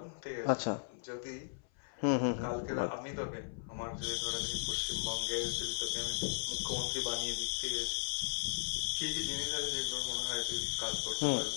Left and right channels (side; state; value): right; silent; 53 dB below the other